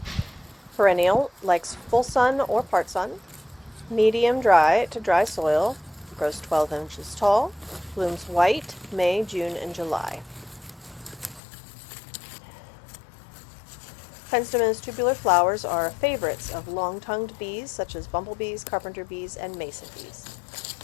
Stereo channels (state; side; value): drops out; right; at 11.4 s